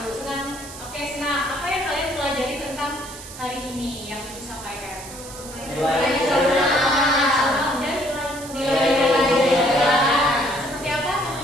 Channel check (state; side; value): noise; right; hiss, 14 dB below the sound